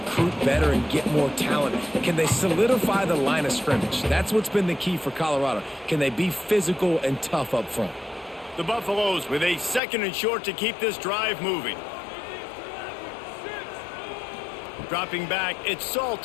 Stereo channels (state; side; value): drops out; right; at 9.8 s